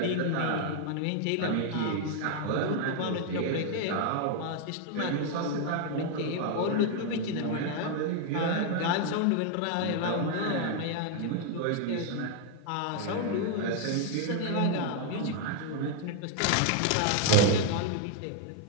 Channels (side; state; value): both; different; correlation 0.00